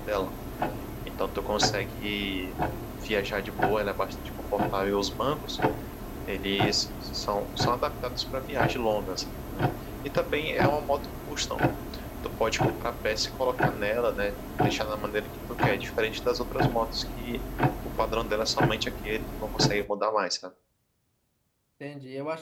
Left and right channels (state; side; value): identical; both; correlation 1.00